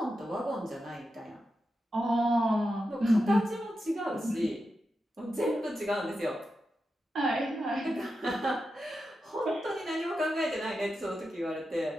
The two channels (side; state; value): both; normal; correlation 0.89